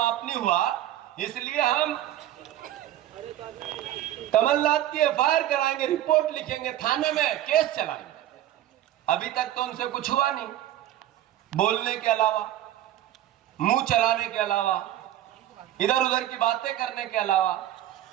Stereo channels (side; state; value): left; quieter; 13.0 dB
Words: नहीं हुआ इसलिए हम कमलनाथ की एफआईआर कराएंगे, रिपोर्ट लिखेंगे, थाने में केस चलाएंगे। अभी तक तो उनसे कुछ हुआ नहीं, बोलने के अलावा, मुंह चलाने के अलावा, इधर उधर की बातें करने के अलावा।